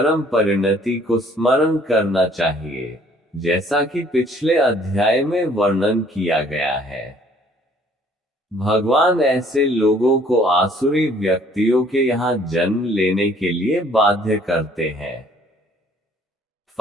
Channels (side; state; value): both; normal; correlation 0.59